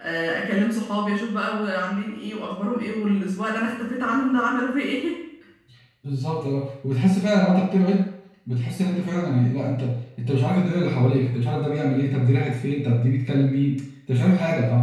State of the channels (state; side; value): identical; both; correlation 1.00